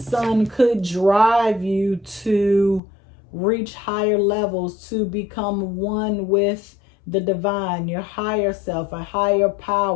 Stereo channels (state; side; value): drops out; right; at 2.8 s